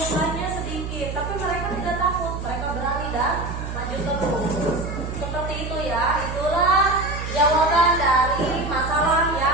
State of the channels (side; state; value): right; noise; hum, 6 dB below the sound